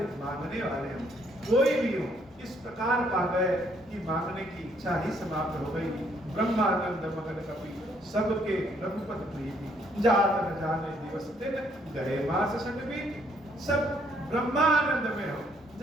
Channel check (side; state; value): both; normal; correlation 0.68